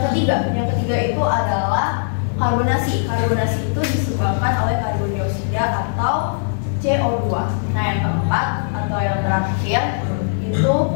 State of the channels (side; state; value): right; silent; 56 dB below the other